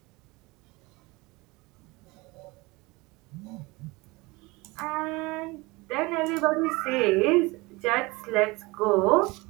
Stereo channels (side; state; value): left; quieter; 23.5 dB